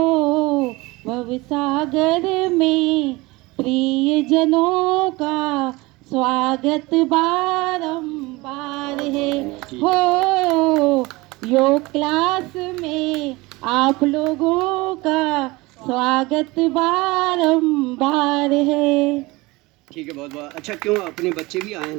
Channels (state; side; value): quieter; left; 22.3 dB